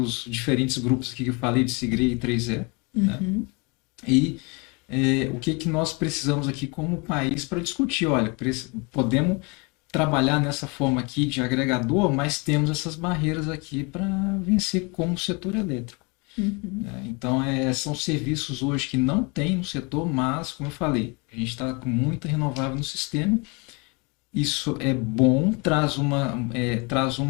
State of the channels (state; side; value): quieter; right; 30.1 dB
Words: diferentes grupos aqui que eu falei de Sigre e 3E, né? Uhum. E o que nós precisamos aqui como país para discutir. Olha, podemos trabalhar nessa forma aqui de agregador, mas temos essas barreiras aqui para vencer como setor elétrico. Uhum. Então, são serviços hoje que não tem no setor, mas, como eu falei, a gente está com muita renovável no sistema. Isso é bom, traz